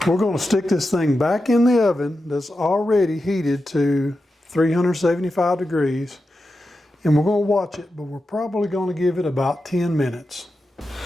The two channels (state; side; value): normal; both; correlation 0.90